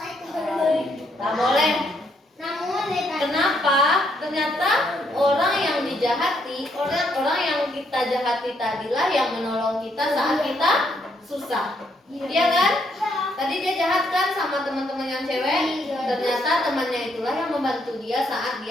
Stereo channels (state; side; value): normal; both; correlation 0.73